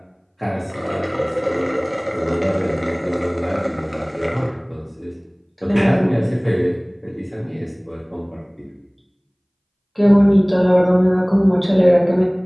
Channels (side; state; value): both; identical; correlation 1.00